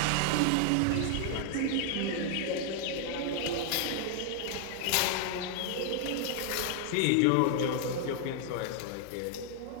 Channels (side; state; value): both; different; correlation 0.00